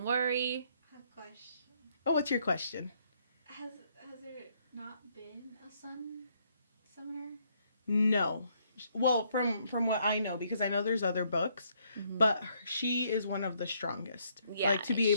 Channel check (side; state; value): both; inverted; correlation -0.70